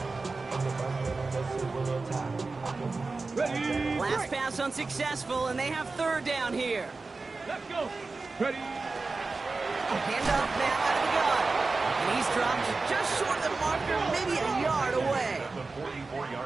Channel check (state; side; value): quieter; left; 3.8 dB